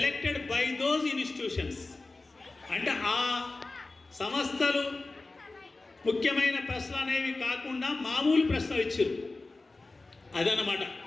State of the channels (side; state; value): right; quieter; 3.4 dB